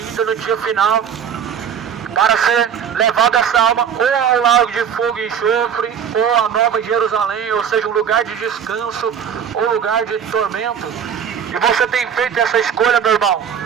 no dia final, para ser levado essa alma ou ao lago de fogo e enxofre, ou a Nova Jerusalém, ou seja, um lugar de descanso, ou lugar de tormento. E você tem feito essa escolha, meu irmão.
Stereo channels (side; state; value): left; quieter; 8.0 dB